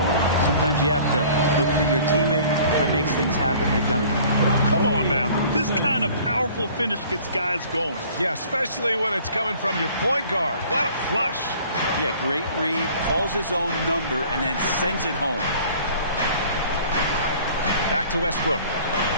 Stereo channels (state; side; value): inverted; both; correlation -0.50